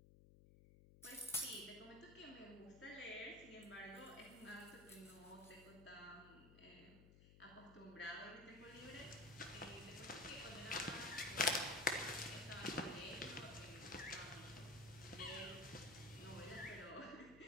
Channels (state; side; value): noise; left; hum, 18 dB below the sound